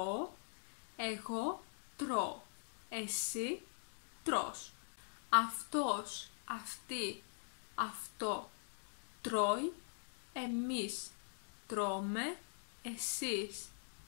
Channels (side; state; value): right; silent; digital silence